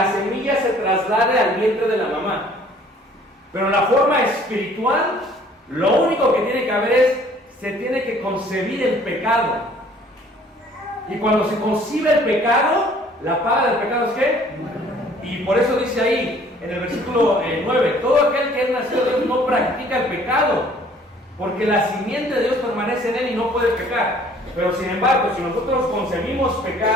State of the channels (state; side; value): normal; both; correlation 0.56